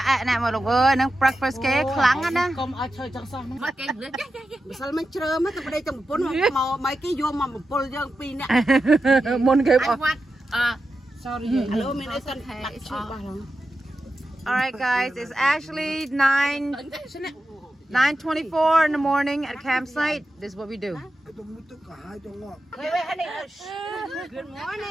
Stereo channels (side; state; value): both; normal; correlation 0.90